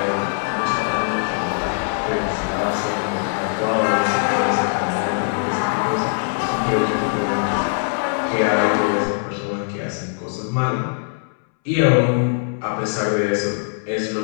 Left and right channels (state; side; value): silent; right; 65 dB below the other